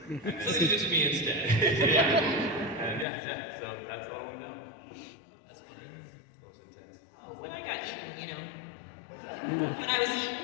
And then, so they did it to me instead. And yeah. So that's all I want to know. That's funny. That was intense. Oh, when I got eaten, you know. When I was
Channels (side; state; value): right; drops out; at 3.1 s